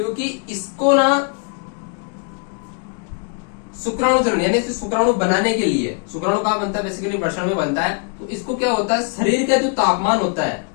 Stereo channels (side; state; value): right; quieter; 37.8 dB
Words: इसको ना शुक्राणु चरण यानी शुक्राणु बनाने के लिए, शुक्राणु कहाँ बनता है, बेसिकली वृषण में बनता है। तो इसको क्या होता है, शरीर का जो तापमान होता है,